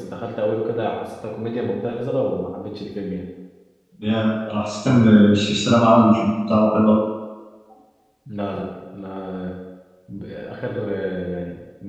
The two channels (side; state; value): both; identical; correlation 1.00